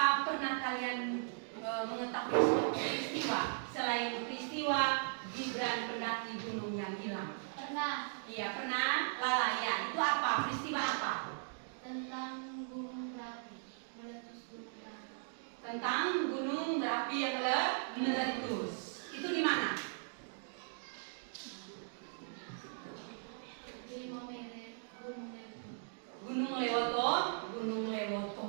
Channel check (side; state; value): left; silent; digital silence